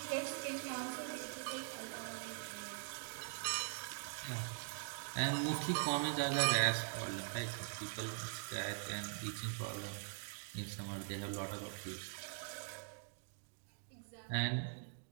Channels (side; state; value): left; silent; digital silence